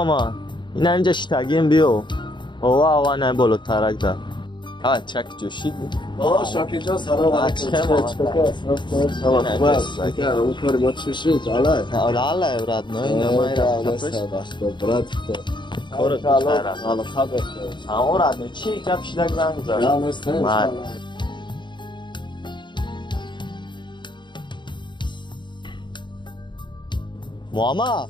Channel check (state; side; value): late; right; 0.22 ms